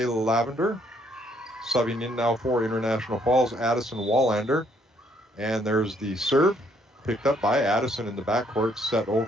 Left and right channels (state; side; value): normal; both; correlation 0.68